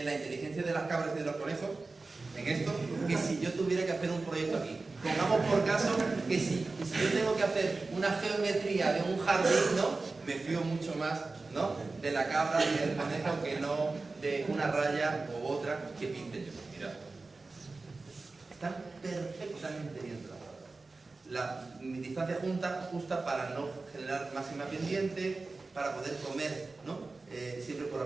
la inteligencia de las cabras y de los conejos, en esto, que si yo tuviera que hacer un proyecto aquí. Pongamos por caso que si yo tengo que hacer una geometría de un jardín, ¿no? Me fío mucho más, ¿no? De la cabra y del conejo que no de una raya u otra que pinte yo. Mirad. Están perfectamente bien trazadas. Mi distancia justa para no generar máxima pendiente, para poder comer, ¿no? Siempre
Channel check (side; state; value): left; quieter; 3.6 dB